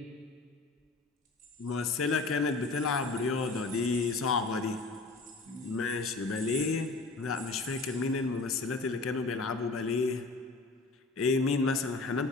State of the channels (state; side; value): quieter; right; 3.7 dB